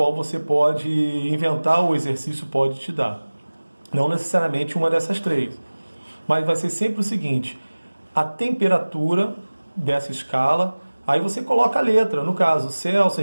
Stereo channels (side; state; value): both; inverted; correlation -1.00